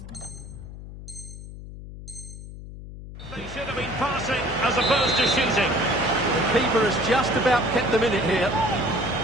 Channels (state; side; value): noise; left; hum, 13 dB below the sound